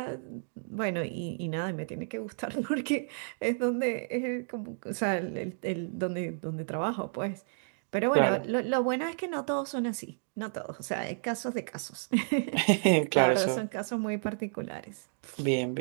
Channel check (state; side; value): silent; left; digital silence